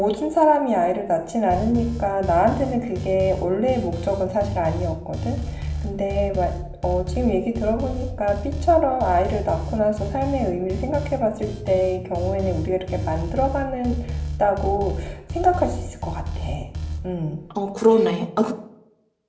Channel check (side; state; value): both; identical; correlation 1.00